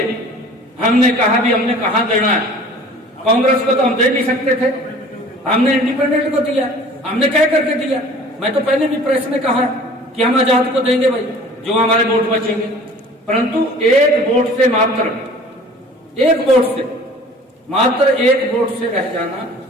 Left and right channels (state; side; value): normal; both; correlation 0.47